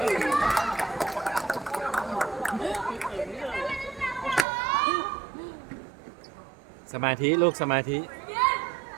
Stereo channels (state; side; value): drops out; left; at 4.5 s